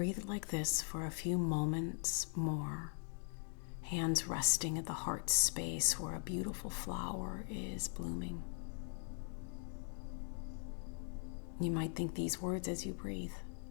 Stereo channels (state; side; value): silent; right; 50 dB below the other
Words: like this for a few moments more. Hands resting at the heart space where a beautiful flower is blooming. You might think these words as you breathe.